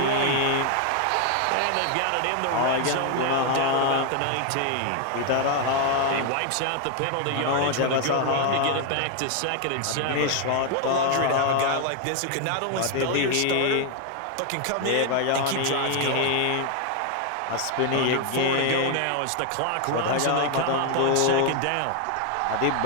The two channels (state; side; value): different; both; correlation 0.00